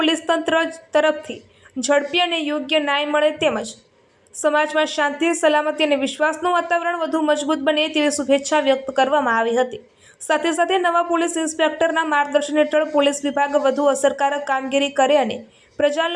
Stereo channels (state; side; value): identical; both; correlation 1.00